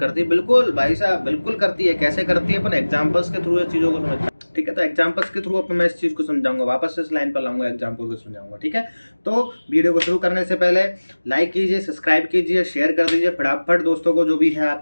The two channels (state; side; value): inverted; both; correlation -1.00